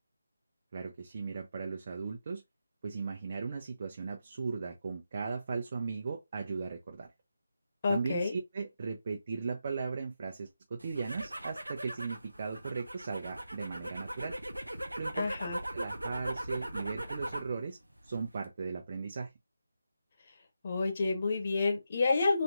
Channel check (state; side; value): inverted; both; correlation -0.86